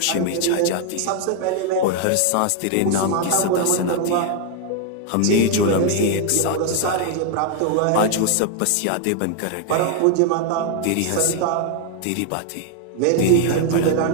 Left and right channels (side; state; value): both; different; correlation 0.00